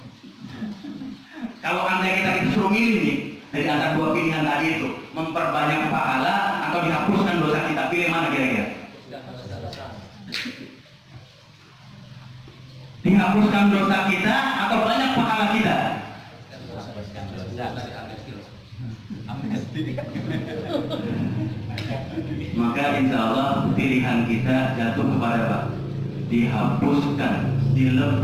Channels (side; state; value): both; identical; correlation 1.00